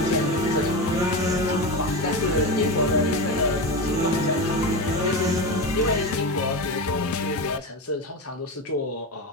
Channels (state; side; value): normal; both; correlation 0.20